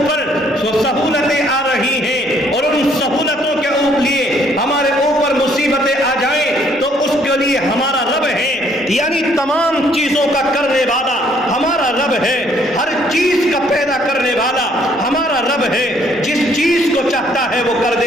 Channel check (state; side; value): noise; right; rumble, 29 dB below the sound